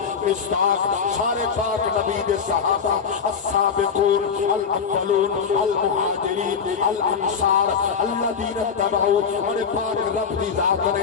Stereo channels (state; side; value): quieter; right; 6.3 dB